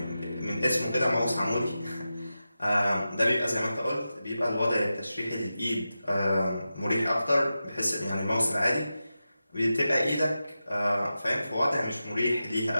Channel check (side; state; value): both; inverted; correlation -0.92